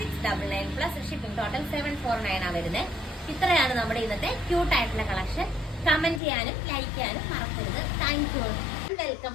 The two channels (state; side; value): drops out; right; at 6.2 s